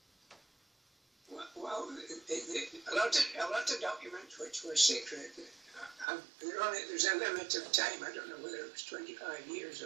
Well, a lot of documents which were secret. There's a limit of time. I don't know whether it was 25 years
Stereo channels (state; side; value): drops out; left; at 6.1 s